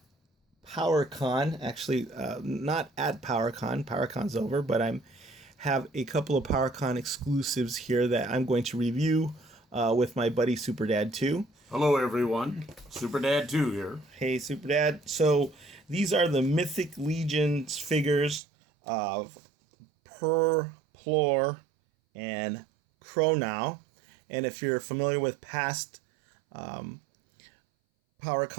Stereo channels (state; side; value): drops out; left; at 18.4 s